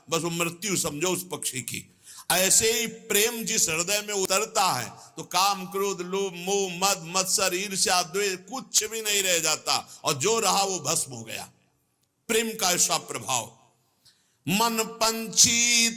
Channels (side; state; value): both; identical; correlation 1.00